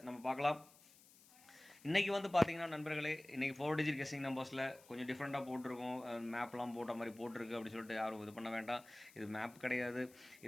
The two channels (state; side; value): noise; left; hiss, 24 dB below the sound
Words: நம்ம பார்க்கலாம். இன்றைக்கி வந்து பார்த்தீங்கன்னா நண்பர்களே, இன்றைக்கி 4 டிஜிட் கெஸ்ஸிங் நம்பர்ஸில் கொஞ்சம் டிஃப்ரெண்ட்டாக போட்டிருக்கோம். மேப்லாம் போட்ட மாதிரி போட்டிருக்கு அப்படின்னு சொல்லிட்டு யாரும் இது பண்ண வேண்டாம். இது மேப் கிடையாது.